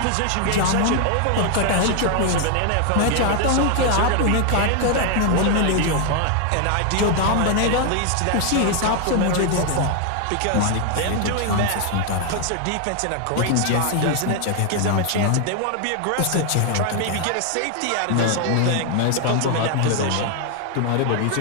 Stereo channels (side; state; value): both; different; correlation 0.00